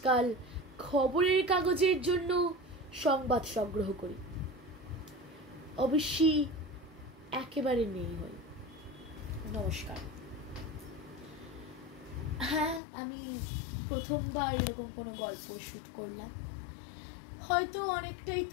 খবরের কাগজের জন্য সংবাদ সংগ্রহ করি। অবশ্যই একেবারে নেই হয়। নমস্কার। হ্যাঁ, আমি প্রথমবার এরকম কোনো গল্প শুট করলাম। হয়তো অনেকটাই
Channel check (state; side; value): drops out; right; at 12.8 s